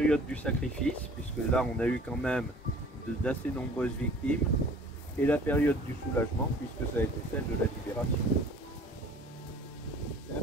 du sacrifice, puisque là on a eu quand même d'assez nombreuses victimes, et la période du soulagement, puisque ça a été celle de la libération. C'est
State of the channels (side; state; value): both; normal; correlation 0.49